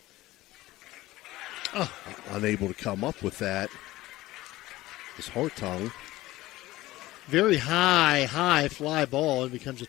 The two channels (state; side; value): quieter; right; 17.5 dB